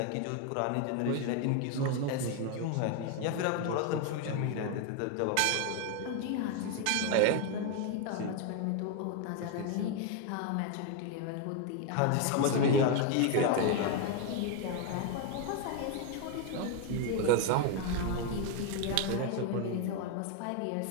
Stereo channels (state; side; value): different; both; correlation 0.01